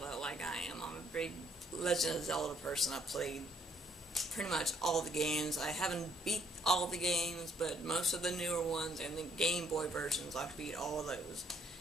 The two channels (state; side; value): normal; both; correlation 0.68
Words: like I am, I'm a big Legend of Zelda person. I've played pretty much all the games. I haven't beat all the games, but most of the newer ones and the Game Boy versions, I've beat all of those.